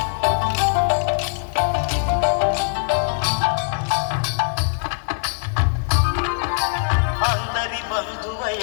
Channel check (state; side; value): silent; right; 64 dB below the other